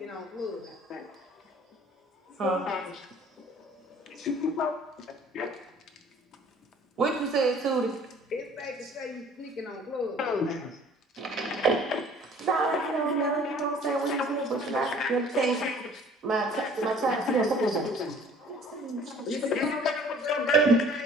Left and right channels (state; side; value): normal; both; correlation 0.52